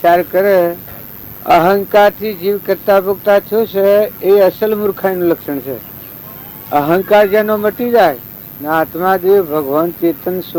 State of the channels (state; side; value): identical; both; correlation 1.00